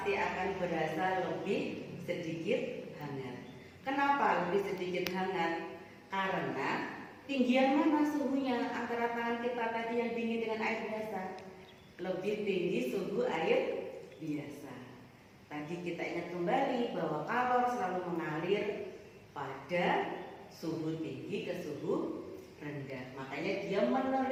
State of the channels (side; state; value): both; identical; correlation 1.00